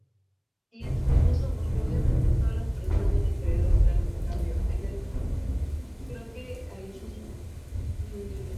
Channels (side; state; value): both; identical; correlation 1.00